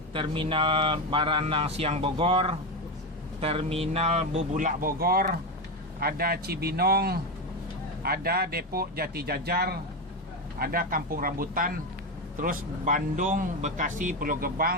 Terminal Baranang Siang Bogor, Terminal Bubulak Bogor, ada Cibinong, ada Depok Jati Jajar, ada Kampung Rambutan, terus Bandung, Bekasi, Pulau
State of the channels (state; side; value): normal; both; correlation 0.13